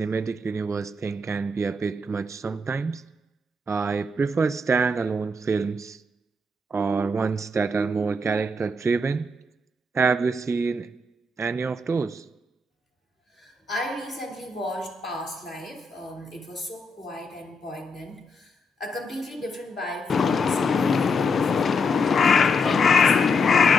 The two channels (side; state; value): both; normal; correlation 0.80